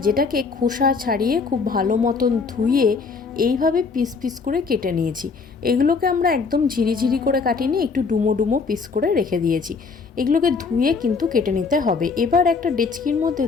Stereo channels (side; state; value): right; quieter; 4.8 dB